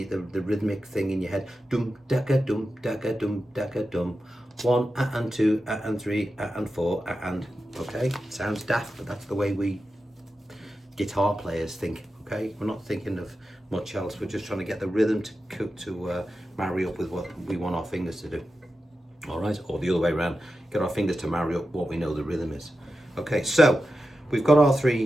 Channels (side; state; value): both; normal; correlation 0.91